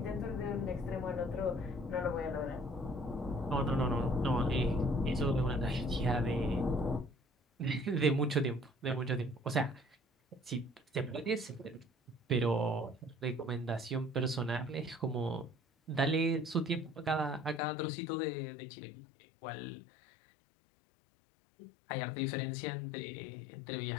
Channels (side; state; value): right; drops out; at 17.6 s